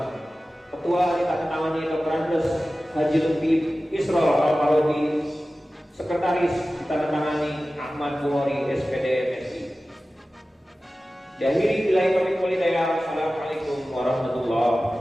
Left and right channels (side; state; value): both; normal; correlation 0.96